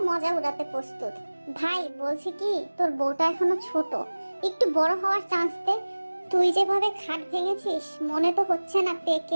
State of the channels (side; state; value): both; inverted; correlation -1.00